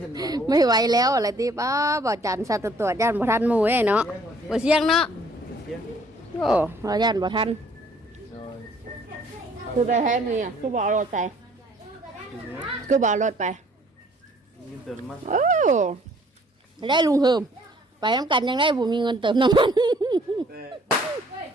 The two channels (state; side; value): normal; both; correlation 0.59